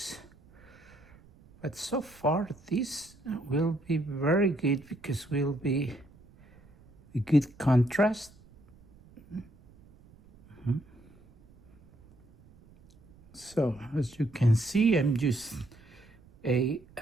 But so far this will be very good because will be a good contrast. So as you can see, I'm just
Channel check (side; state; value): right; noise; rumble, 26 dB below the sound